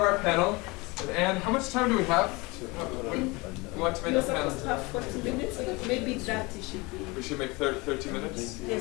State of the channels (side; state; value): right; quieter; 25.2 dB